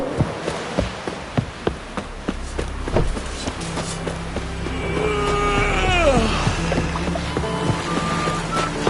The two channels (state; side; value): identical; both; correlation 1.00